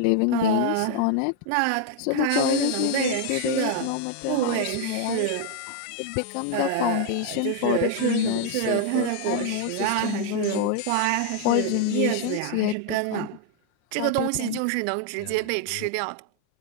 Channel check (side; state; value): both; different; correlation 0.00